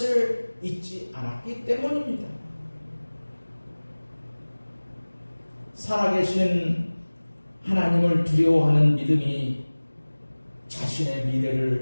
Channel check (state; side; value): inverted; both; correlation -1.00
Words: 잊지 않았기 때문입니다. 살아계신 하나님을 두려워하는 믿음이 자신의